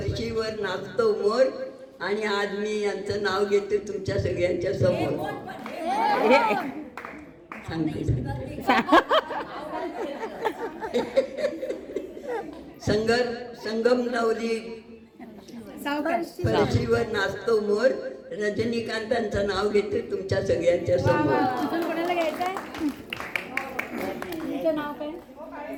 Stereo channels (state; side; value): identical; both; correlation 1.00